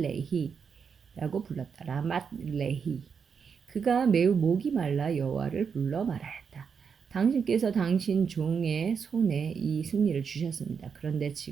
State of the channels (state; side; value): quieter; left; 6.3 dB